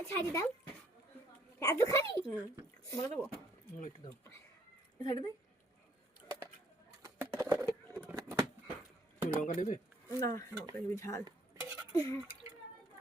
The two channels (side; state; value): both; normal; correlation 0.66